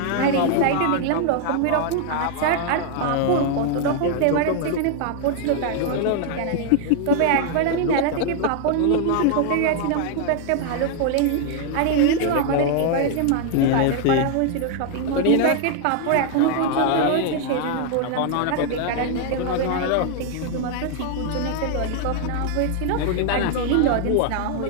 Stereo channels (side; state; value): both; different; correlation 0.00